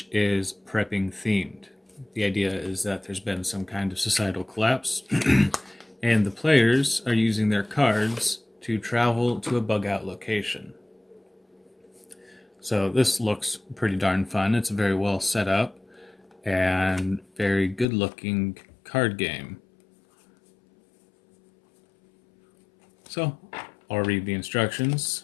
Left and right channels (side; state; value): right; drops out; at 17.9 s